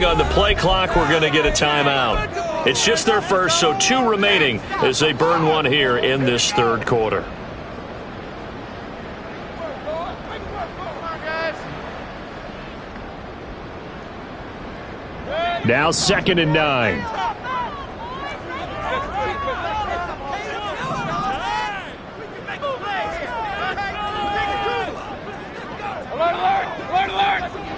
on the play clock, we're going to get a timeout. It's just their first, so 2 remaining as they burn one here in this third quarter. Now 2nd and 9.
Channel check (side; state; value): both; identical; correlation 1.00